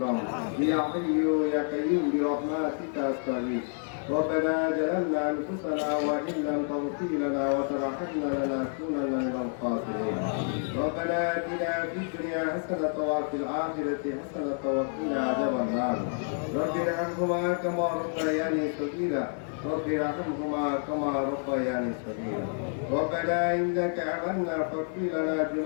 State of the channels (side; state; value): right; silent; 59 dB below the other